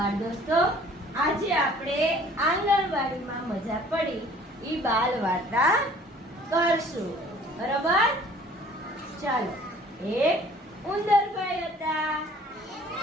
દોસ્તો, આજે આપણે આંગણવાડીમાં મજા પડી ઈ બાલ વાર્તા કરશું. બરોબર? ચાલો. એક ઉંદરભાઈ હતા.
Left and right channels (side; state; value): both; normal; correlation 0.53